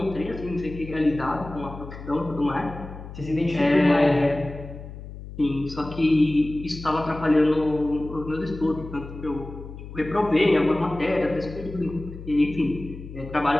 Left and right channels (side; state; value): left; noise; hum, 12 dB below the sound